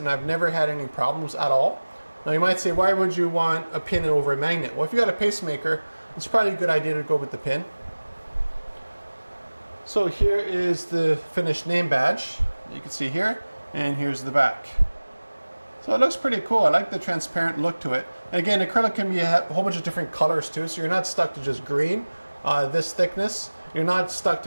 I've never had any problems at all. Now you might say, why would you want a pin over a magnet? Well, if you got a pacemaker, it's probably a good idea to go with the pin. So here is the finished name badge. You can see here, and here's the back. So it looks pretty cool. I like the transparent look to it. And again, acrylic can be a whole bunch of different colors too, so you're not stuck to just green, this thickness. You're not stuck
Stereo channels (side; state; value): both; inverted; correlation -1.00